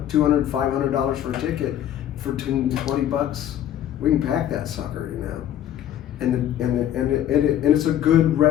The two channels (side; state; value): right; quieter; 11.1 dB